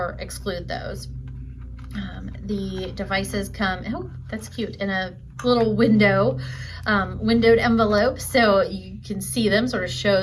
exclude those. The devices come, oh, that's cute, in a little windowed envelope, so you can see them, sort of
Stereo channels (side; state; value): both; identical; correlation 1.00